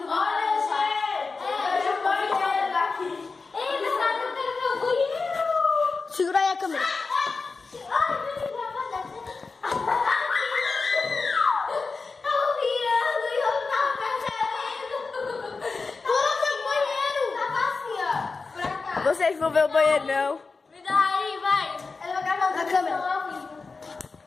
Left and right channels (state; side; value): quieter; right; 4.3 dB